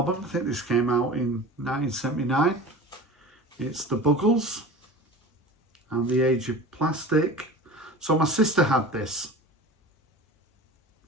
I think this came out in 1979. It's the Bugles and The Age of Plastic. So my sister had this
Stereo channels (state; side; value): normal; both; correlation 0.35